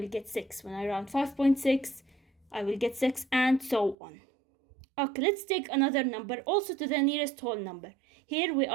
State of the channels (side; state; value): left; drops out; at 4.0 s